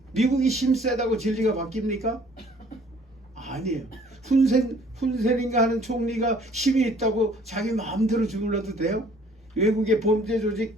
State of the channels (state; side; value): normal; both; correlation 0.56